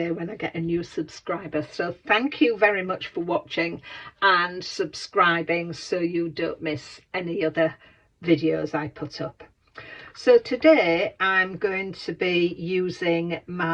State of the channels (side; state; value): both; identical; correlation 1.00